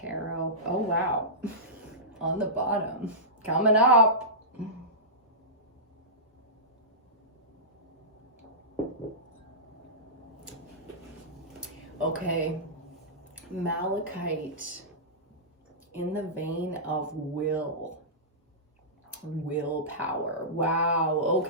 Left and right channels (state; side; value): normal; both; correlation -0.19